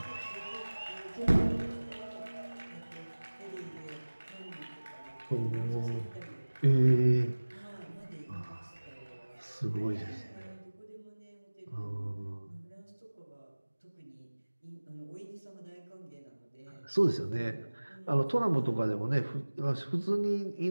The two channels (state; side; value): inverted; both; correlation -1.00